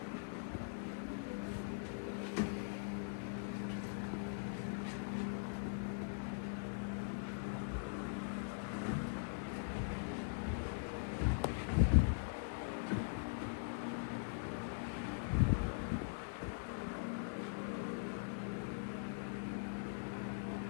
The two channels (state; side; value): silent; right; digital silence